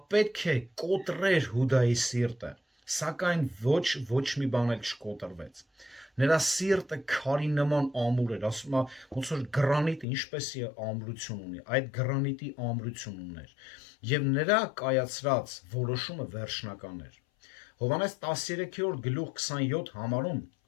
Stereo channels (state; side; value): drops out; right; at 10.1 s